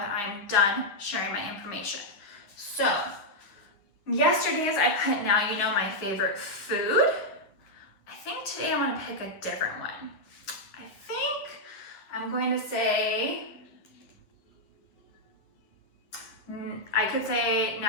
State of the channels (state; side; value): late; right; 10 ms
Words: I'm done sharing my information. So yesterday's I put now you know my favorite food. I think today I want to pick a different one. I think I'm going to say, I could say